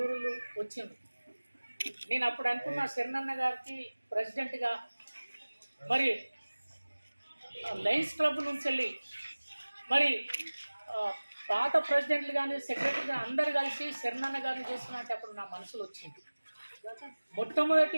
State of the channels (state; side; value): inverted; both; correlation -1.00